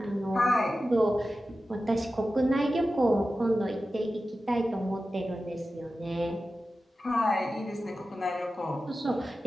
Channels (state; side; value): normal; both; correlation 0.93